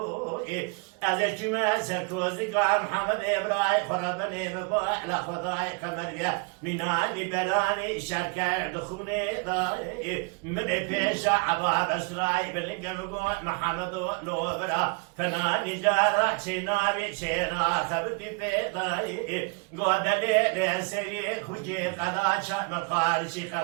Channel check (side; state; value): left; quieter; 32.6 dB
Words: أذكي ما سركوزي قام محمد إبراهيم خربني ببوح لخضاي خمريا مناني بلاني شركة دخوني ضاي من بيشا عباب أسراي باللقى مقوع محمد لوبرا فناني جارة سيناري سيرا تبدي في ضاي قودلي لسيري كجي قلاشا مقارشي